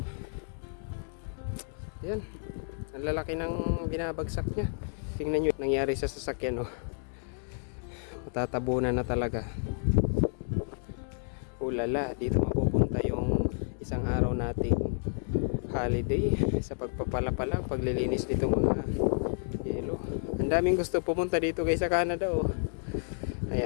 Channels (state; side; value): silent; right; digital silence